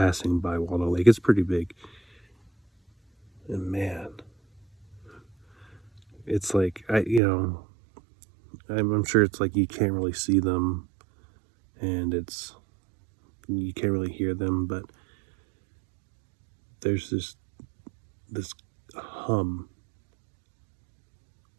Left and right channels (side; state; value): left; drops out; at 7.2 s